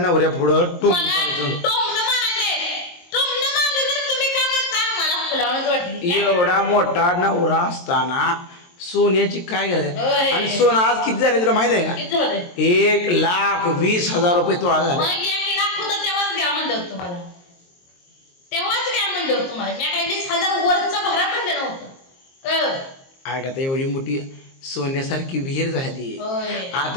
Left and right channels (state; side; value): late; right; 22 ms